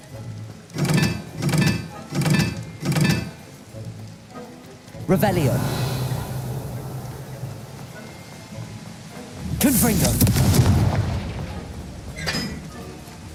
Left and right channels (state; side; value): identical; both; correlation 1.00